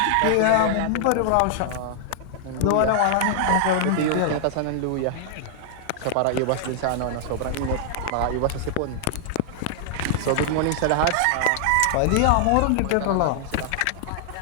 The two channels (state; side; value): different; both; correlation -0.01